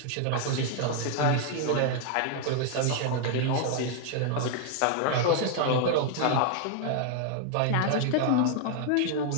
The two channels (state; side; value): different; both; correlation 0.00